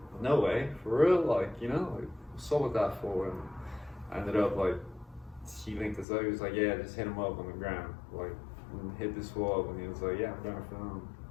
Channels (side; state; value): right; drops out; at 6.1 s